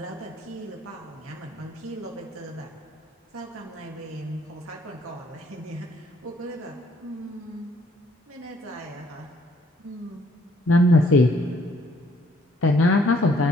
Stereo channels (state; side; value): normal; both; correlation 0.63